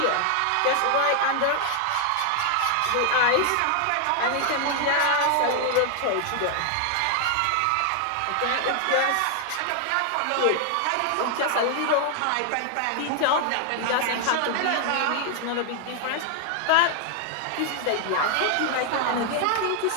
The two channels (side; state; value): both; different; correlation 0.00